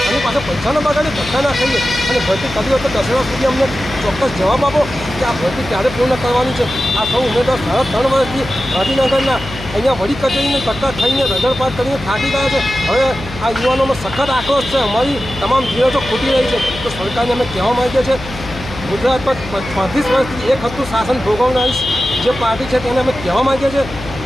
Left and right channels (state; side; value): noise; left; hum, 12 dB below the sound